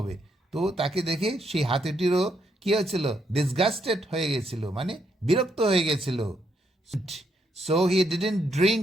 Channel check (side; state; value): both; normal; correlation 0.76